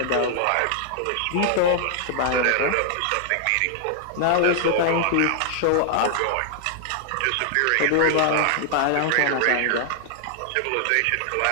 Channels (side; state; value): both; different; correlation 0.00